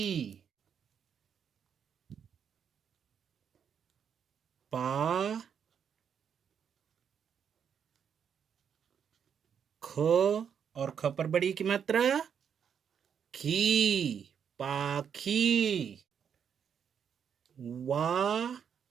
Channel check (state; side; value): quieter; left; 7.7 dB